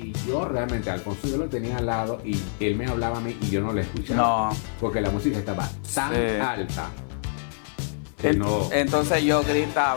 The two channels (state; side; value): silent; right; 58 dB below the other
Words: yo realmente, Alfonso, yo lo tenía al lado y él me hablaba a mí y yo no le escuchaba. No. Porque la música estaba tan Sí. alta que no. Entonces yo